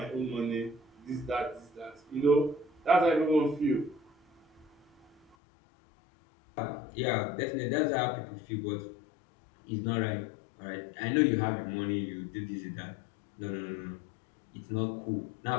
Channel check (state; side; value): drops out; right; at 5.4 s